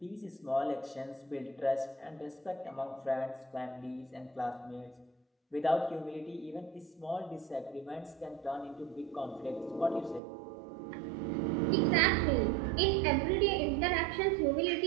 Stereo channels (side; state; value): left; drops out; at 10.2 s